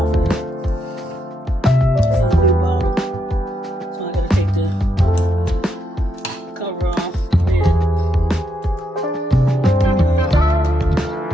of it. It's a new bottle. So I got to take the cover off the lid.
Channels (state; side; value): normal; both; correlation 0.80